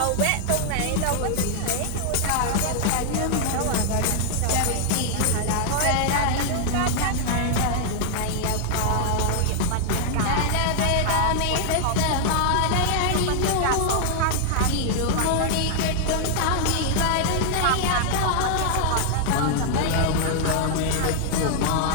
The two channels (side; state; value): both; different; correlation 0.00